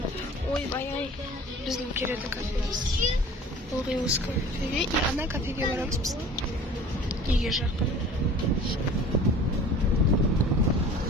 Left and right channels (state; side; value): normal; both; correlation 0.44